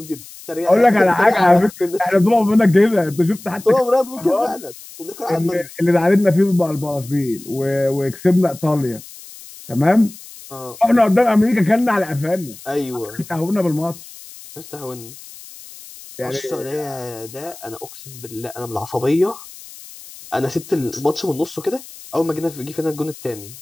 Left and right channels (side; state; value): left; noise; hiss, 18 dB below the sound